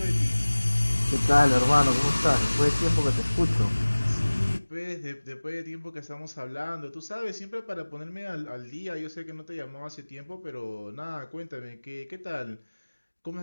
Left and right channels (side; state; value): both; inverted; correlation -1.00